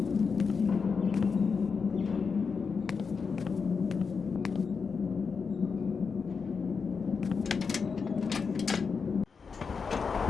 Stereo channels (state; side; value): quieter; right; 5.4 dB